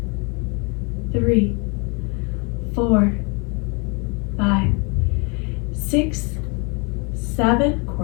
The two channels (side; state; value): right; quieter; 32.4 dB